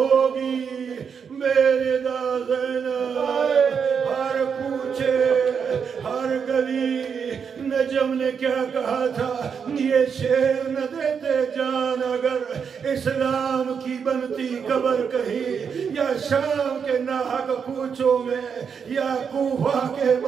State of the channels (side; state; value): left; quieter; 6.6 dB